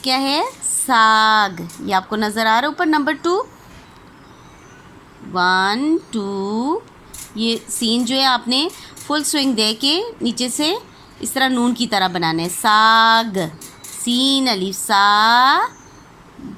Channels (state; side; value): identical; both; correlation 1.00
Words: क्या है, साग। ये आपको नज़र आ रहा है ऊपर। नंबर 2, 1 2, ये सीन जो है आपने फुल स्विंग दे के नीचे से इस तरह नून की तरह बनाना है। साग, सीन अलिफ सा,